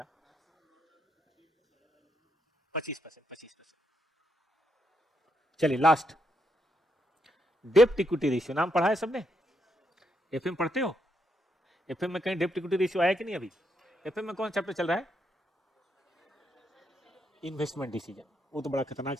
25%. 25%. चलिए लास्ट, डेप्ट इक्विटी रेशियो. नाम पढ़ा है सबने? एफएम पढ़ते हो? एफएम में कहीं डेप्ट इक्विटी रेशियो आया कि नहीं? अभी एफएम में कौन चैप्टर चल रहा है? Investment decision. वो तो बड़ा खतरनाक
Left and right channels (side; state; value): both; normal; correlation 0.78